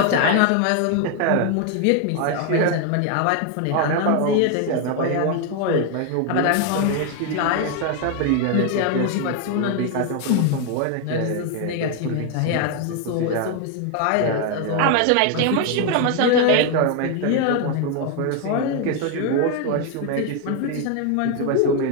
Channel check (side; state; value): both; different; correlation 0.01